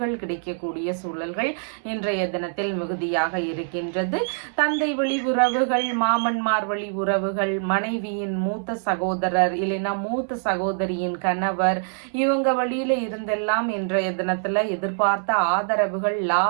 கிடைக்கக்கூடிய சூழல்கள் இன்றைய தினத்தில் மிகுதியாக இருக்கின்றது. தந்தை வழி உறவுகள், மாமன்மார் வழி உறவுகள், மனைவியின் மூத்த சகோதரர் இல்லைன்னா மூத்த சகோதரியின் கணவர் இவங்க வழியில இருந்தெல்லாம் இன்றைய தினத்துல எதிர்பார்த்த ஆதரவுகள்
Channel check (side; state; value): left; silent; digital silence